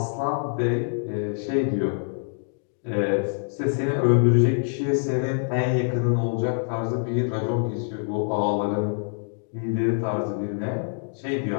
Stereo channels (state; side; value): silent; right; digital silence